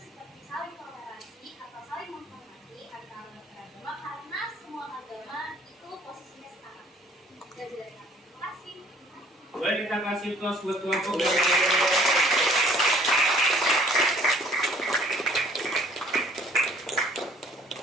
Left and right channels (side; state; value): both; normal; correlation 0.58